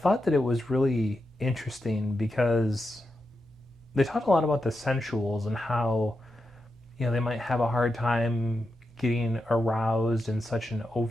that it was really interesting because they talked a lot about the sensuals and how, you know, they might have a hard time getting aroused in such an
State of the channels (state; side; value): normal; both; correlation 0.88